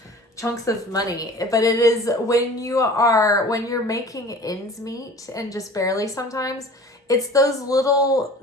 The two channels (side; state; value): both; normal; correlation 0.43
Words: chunks of money, but it is when you're making ends meet and just barely sometimes. It's those little